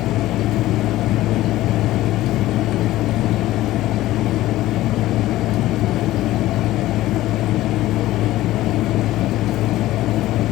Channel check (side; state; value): right; quieter; 15.9 dB